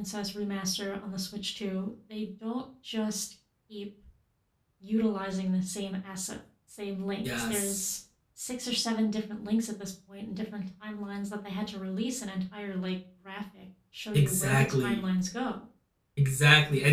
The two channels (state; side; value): identical; both; correlation 1.00